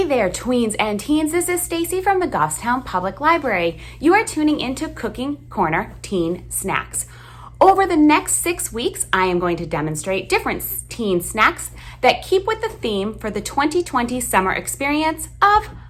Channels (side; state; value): both; identical; correlation 1.00